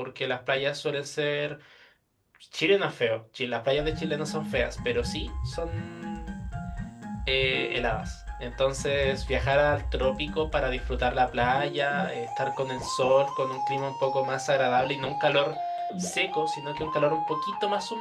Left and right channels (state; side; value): identical; both; correlation 1.00